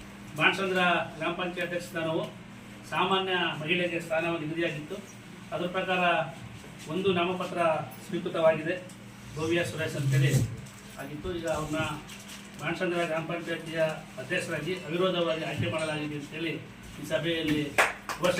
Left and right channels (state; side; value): identical; both; correlation 1.00